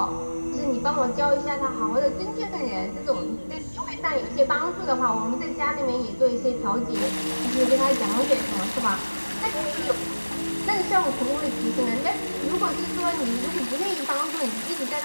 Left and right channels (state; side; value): inverted; both; correlation -1.00